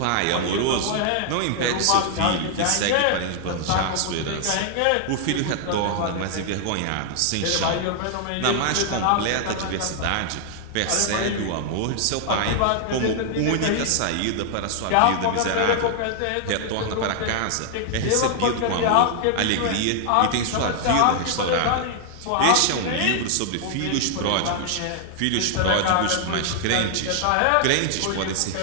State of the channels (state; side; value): different; both; correlation 0.00